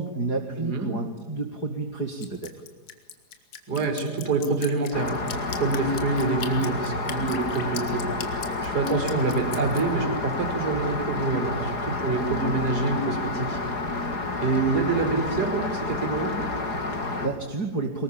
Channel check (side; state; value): right; late; 4.9 ms